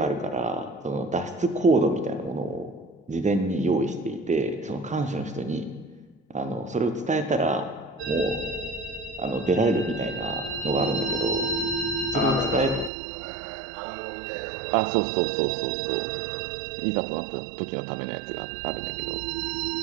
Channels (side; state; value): left; drops out; at 12.9 s